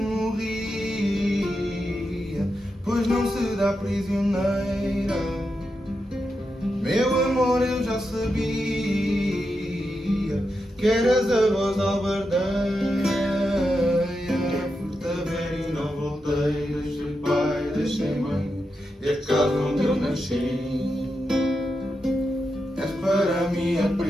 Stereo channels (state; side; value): normal; both; correlation 0.87